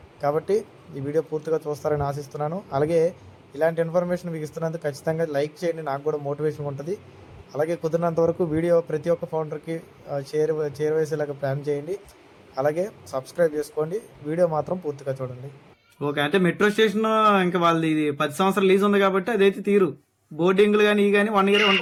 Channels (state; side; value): identical; both; correlation 1.00